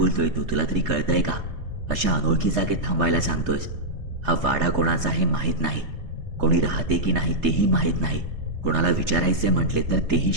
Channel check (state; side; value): late; left; 3.3 ms